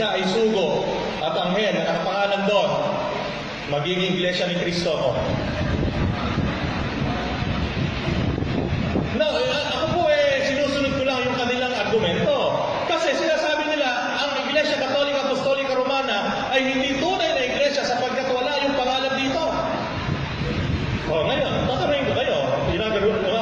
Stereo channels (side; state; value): both; identical; correlation 1.00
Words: ay sugo at anghel na nakapangalan doon, magiging iglesia ni Kristo ako. No, ako po sinusunod ko lang yung kanilang argumento. Kasi sinasabi nila, ang Iglesia Katolika Apostolika Romana ay hindi tunay na iglesia sapagkat wala yung pangalan dito. O ngayon, tatanungin ko kayo, yung